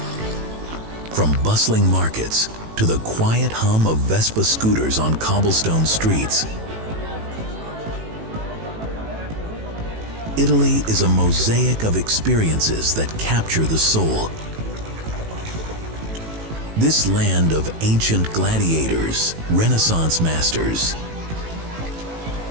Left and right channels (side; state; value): left; late; 18 ms